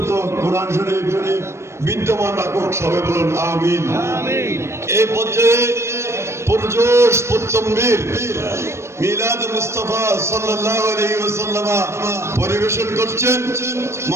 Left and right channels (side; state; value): left; late; 0.13 ms